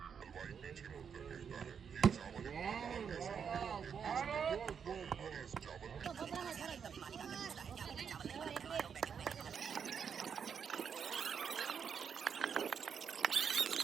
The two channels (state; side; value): quieter; left; 7.0 dB